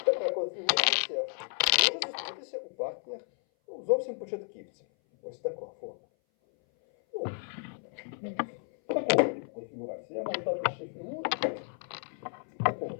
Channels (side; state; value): right; silent; 56 dB below the other